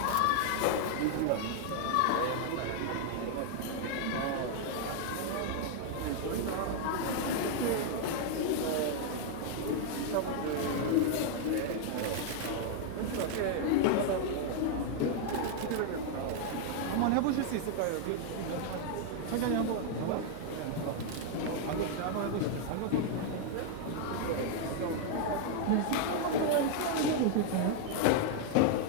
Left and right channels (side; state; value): both; different; correlation 0.00